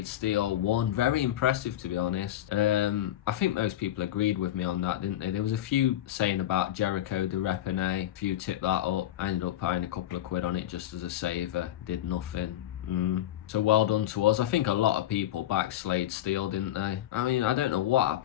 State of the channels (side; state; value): right; quieter; 12.8 dB